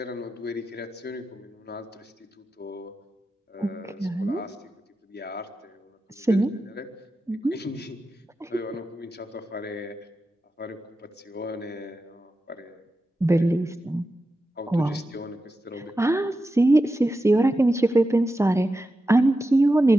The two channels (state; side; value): normal; both; correlation 0.91